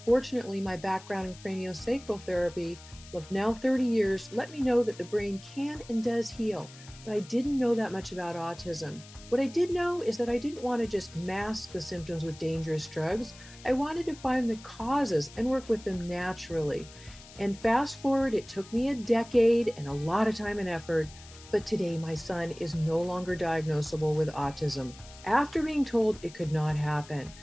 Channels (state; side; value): noise; left; hiss, 20 dB below the sound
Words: Fortunately, my background in craniosacral therapy of now 30 years let me know that the brain can and does heal, but I didn't know that much about autism. What I did know is that I didn't want to just mask the symptoms with dangerous drugs. I wanted to find the causes and work with them naturally. And fast forward, it took me a decade and a lot of time and effort, but today my son is no longer diagnosable with autism after being told it could not happen.